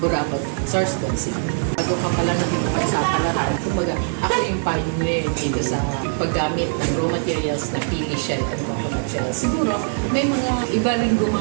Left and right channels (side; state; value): left; silent; 64 dB below the other